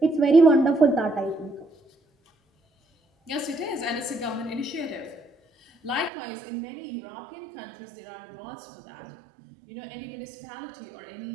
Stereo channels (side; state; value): left; drops out; at 6.1 s